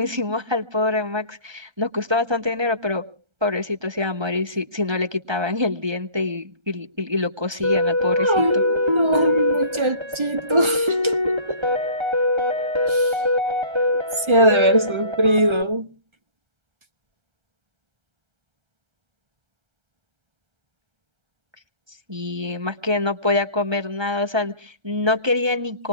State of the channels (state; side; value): late; left; 1.4 ms